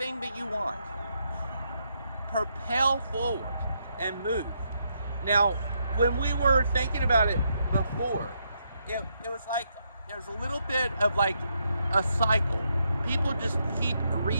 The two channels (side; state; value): both; inverted; correlation -0.79